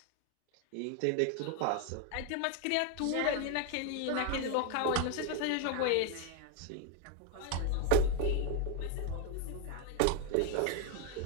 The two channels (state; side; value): different; both; correlation 0.01